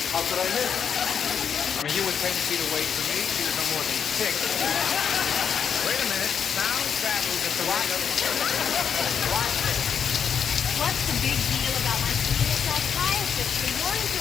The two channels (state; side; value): quieter; right; 7.3 dB